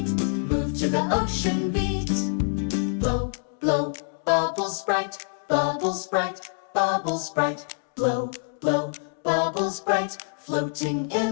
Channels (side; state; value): right; silent; digital silence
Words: Move to the ocean beat. Blow, blow, bubbles bright, bubbles bright, bubbles bright. Blow, blow, bubbles bright, floating